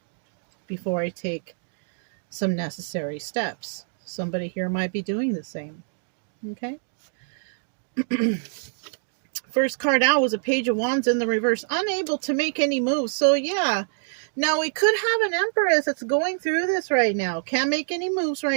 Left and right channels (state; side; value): silent; left; digital silence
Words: before I take some necessary steps. Somebody here might be doing the same. Okay. First card out was a Page of Wands in the reverse, unable to make any moves. So yeah, now we could have an Empress that's going through this right now. Can't make any moves